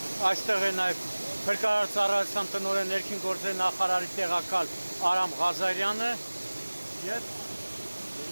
այստեղ է նաև Փրկարարության տնօրեն ներքին գործերի նախարարի տեղակալ Արամ Ղազարյանը եւ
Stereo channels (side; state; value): both; inverted; correlation -1.00